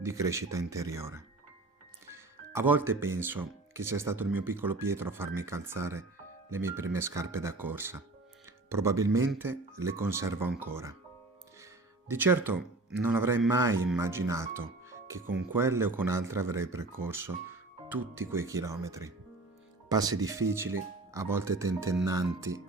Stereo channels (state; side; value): quieter; left; 3.1 dB